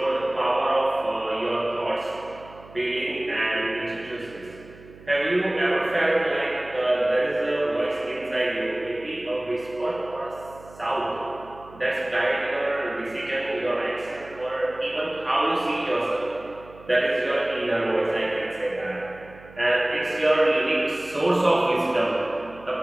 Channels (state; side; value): noise; right; hum, 21 dB below the sound